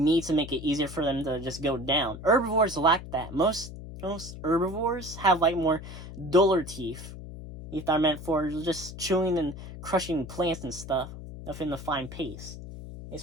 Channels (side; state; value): left; noise; hum, 12 dB below the sound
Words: and make it easier for them to just go down. Herbivores lack that. Most herbivores have like more duller teeth. Teeth are meant for just chewing and crushing plants and stuff within the fine paste. And